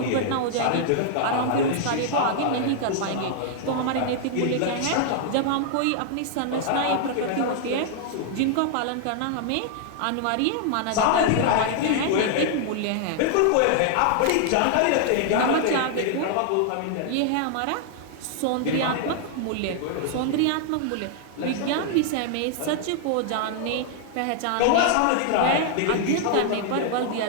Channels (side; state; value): both; different; correlation 0.00